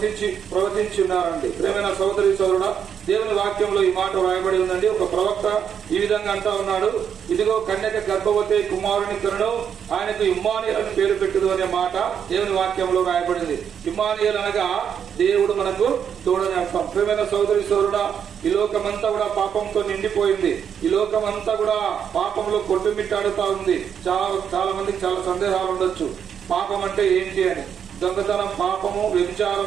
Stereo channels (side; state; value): left; quieter; 8.0 dB